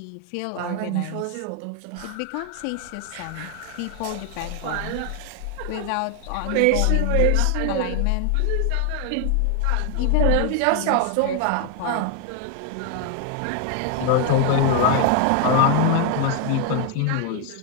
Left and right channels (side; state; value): both; different; correlation 0.00